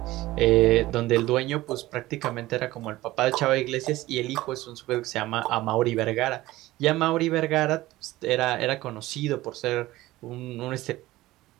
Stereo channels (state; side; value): quieter; left; 17.4 dB